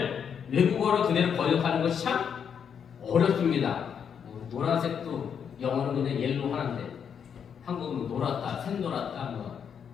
외국어로 그대로 번역하는 것이 참 어렵습니다. 노란색도 영어는 그냥 옐로우 하는데 한국은 노랗다, 샛노랗다,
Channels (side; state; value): right; quieter; 7.6 dB